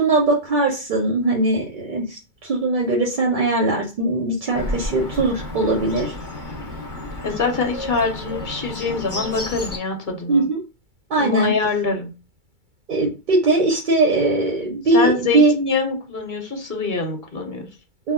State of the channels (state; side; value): late; left; 2.3 ms